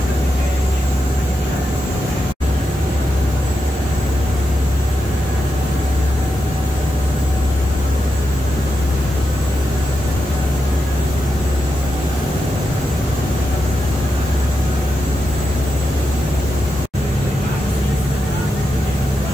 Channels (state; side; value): normal; both; correlation 0.87